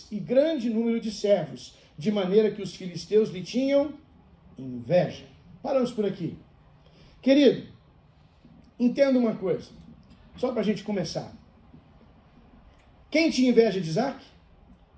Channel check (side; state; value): both; identical; correlation 1.00